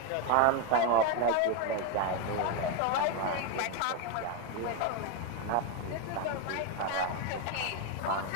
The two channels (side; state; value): both; different; correlation 0.02